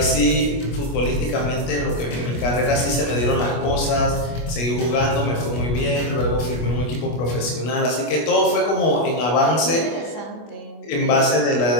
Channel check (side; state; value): right; late; 25 ms